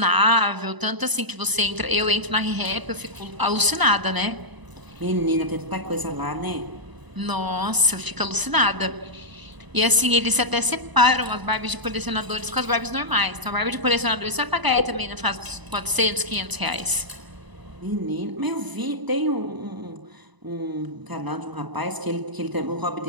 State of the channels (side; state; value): left; late; 1.0 ms